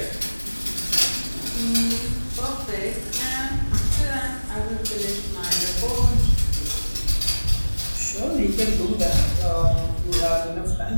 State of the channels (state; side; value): inverted; both; correlation -1.00